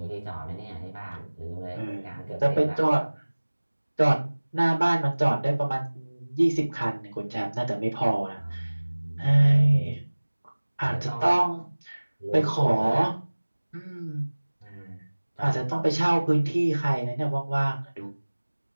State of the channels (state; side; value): inverted; both; correlation -1.00